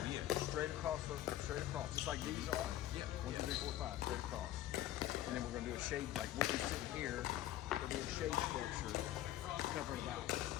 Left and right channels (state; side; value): quieter; right; 13.4 dB